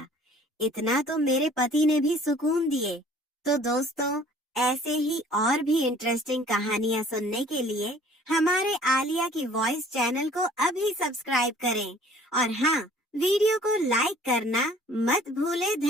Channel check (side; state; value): both; normal; correlation 0.53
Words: इतना तो मेरे पति ने भी सुकून दिए। तो दोस्तों, ऐसे ही और भी इंटरेस्टिंग कहानियां सुनने के लिए हमारे आलिया की वॉइस चैनल को अभी सब्सक्राइब करें और हाँ, वीडियो को लाइक करना मत भूलें।